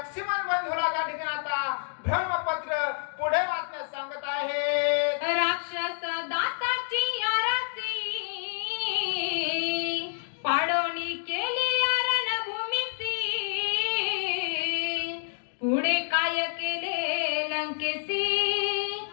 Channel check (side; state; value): right; silent; 59 dB below the other